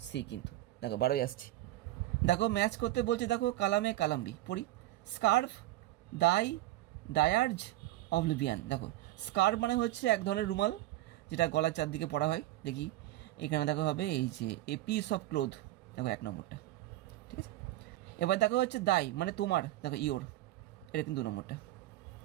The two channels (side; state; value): left; quieter; 15.7 dB